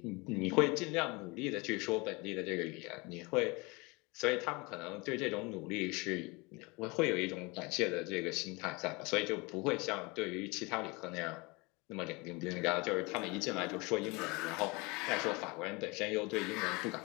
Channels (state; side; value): quieter; right; 26.3 dB